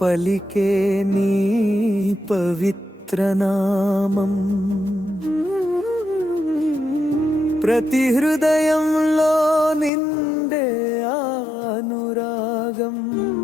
పలికే నీ పవిత్ర నామం ప్రతి హృదయంలో నిండే అనురాగం.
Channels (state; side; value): drops out; right; at 9.9 s